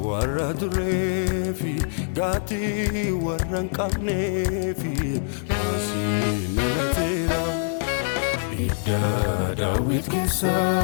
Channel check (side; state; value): right; silent; digital silence